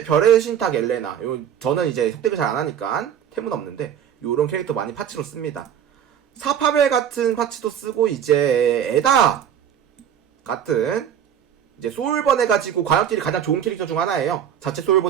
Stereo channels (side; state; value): left; quieter; 9.0 dB